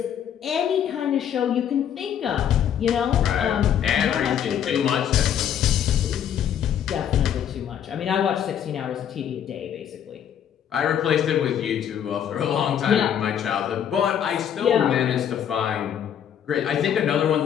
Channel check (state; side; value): quieter; right; 9.3 dB